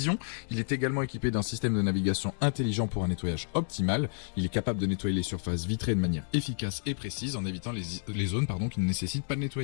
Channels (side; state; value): right; silent; digital silence